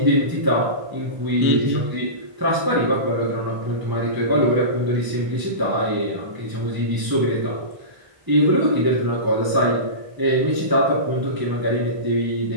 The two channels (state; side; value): late; left; 1.0 ms